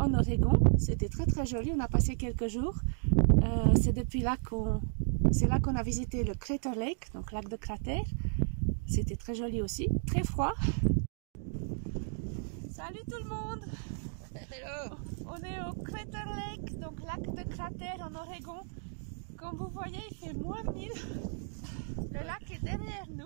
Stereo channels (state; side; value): silent; left; 55 dB below the other